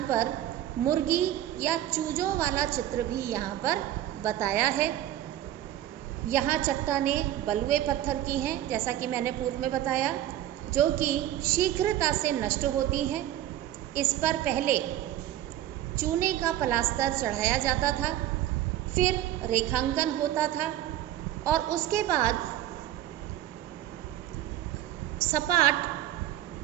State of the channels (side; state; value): left; quieter; 12.7 dB